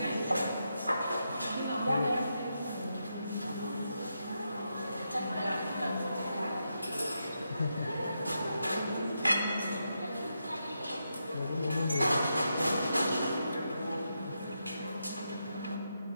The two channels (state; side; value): inverted; both; correlation -0.84